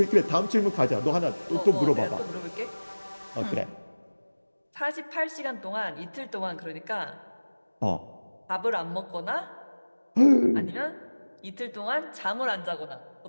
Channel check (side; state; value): both; inverted; correlation -1.00